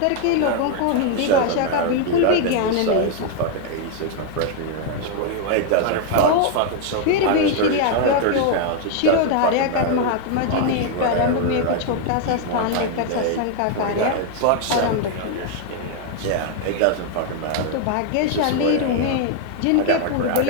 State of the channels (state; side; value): different; both; correlation 0.00